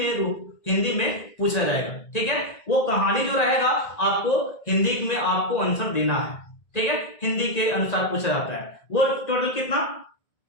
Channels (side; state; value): right; late; 1.9 ms